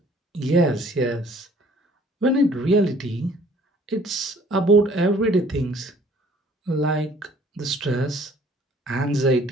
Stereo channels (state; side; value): normal; both; correlation 0.56